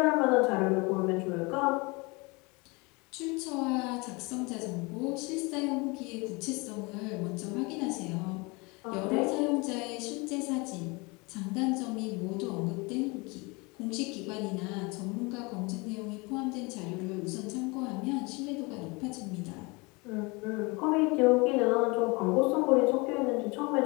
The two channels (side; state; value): right; quieter; 27.1 dB